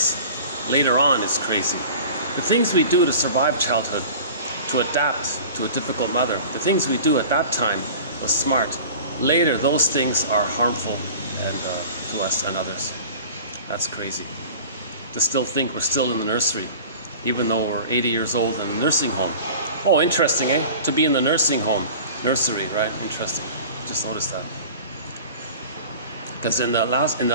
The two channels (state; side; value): inverted; both; correlation -0.40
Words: later on is crazy. The things we do to survive childhood, to adapt to a difficult mother, the things we do at that time was smart. Later, those things are harmful and to us and others. That's crazy. To still think we're still in the nursery, even though we're 80 years old in a nursing home. Oh, interesting, eh? To be in the nursing home, nursery, right? Interesting. Just noticed that. Because in the